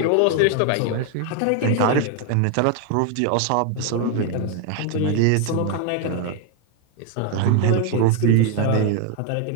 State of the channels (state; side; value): different; both; correlation 0.01